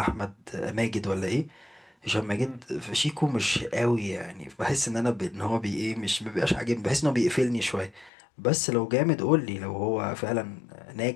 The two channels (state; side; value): drops out; right; at 8.1 s